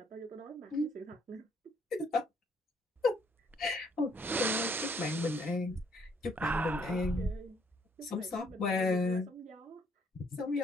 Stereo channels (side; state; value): both; normal; correlation 0.67